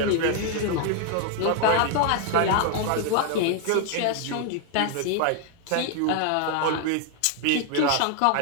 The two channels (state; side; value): different; both; correlation 0.00